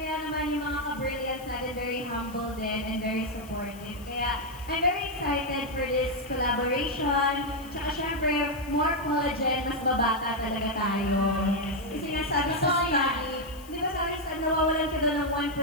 naman yung mga ka-brilliance natin, very humble din and very supportive. Kaya, I'm very excited for this collaboration. Tsaka syempre, more collagen, mas babata talaga tayo. Kasi nga sabi sa Totoo yan. study, di ba sabi sa nawawalan ka daw ng 1%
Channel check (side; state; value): left; noise; hiss, 21 dB below the sound